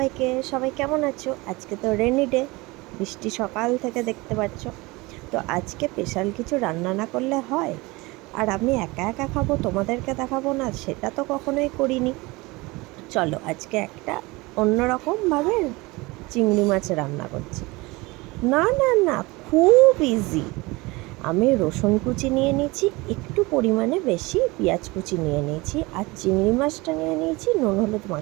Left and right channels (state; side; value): quieter; left; 23.2 dB